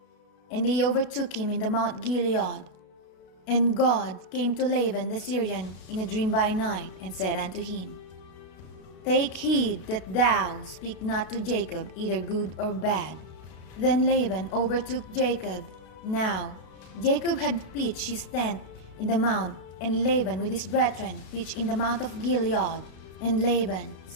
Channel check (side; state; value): right; late; 32 ms